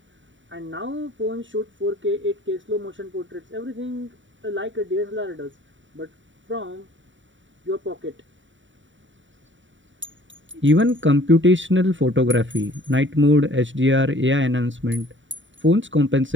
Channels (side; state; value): left; late; 0.55 ms